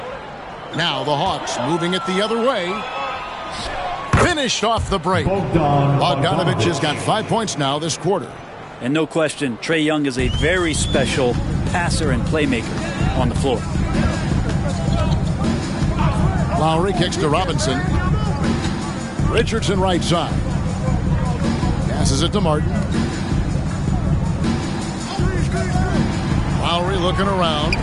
Now the Hawks moving it the other way. Finished off the break. Bogdanovich has got 5 points now this quarter. And no question, Trae Young is a very special passer and playmaker on the floor. Lowry kicks to Robinson. Richardson right side. Passes it to Martin. Lowry looking around.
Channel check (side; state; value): both; identical; correlation 1.00